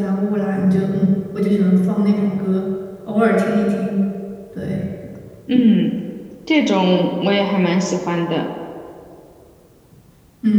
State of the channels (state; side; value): identical; both; correlation 1.00